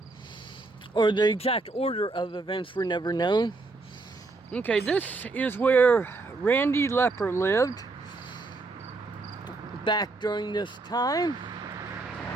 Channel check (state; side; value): quieter; left; 3.5 dB